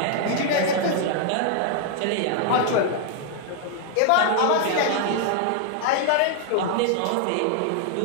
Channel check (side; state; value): both; different; correlation 0.00